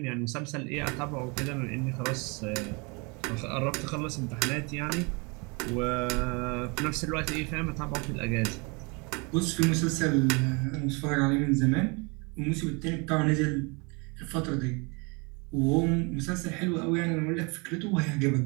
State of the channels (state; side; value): quieter; left; 30.2 dB